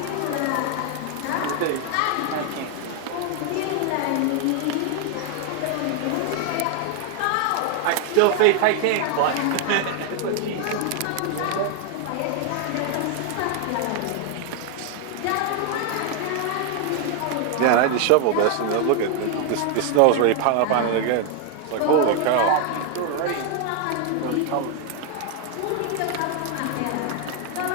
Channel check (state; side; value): different; both; correlation 0.00